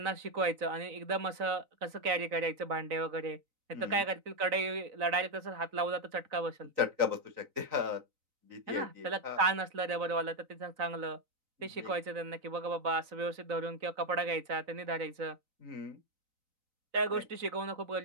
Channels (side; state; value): left; late; 3.9 ms